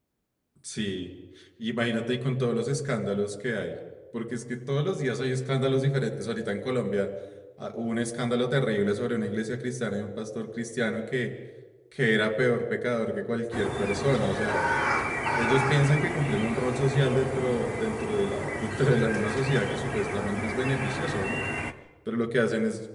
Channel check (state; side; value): identical; both; correlation 1.00